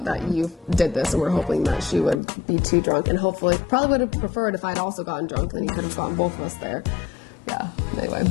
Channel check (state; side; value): drops out; right; at 2.2 s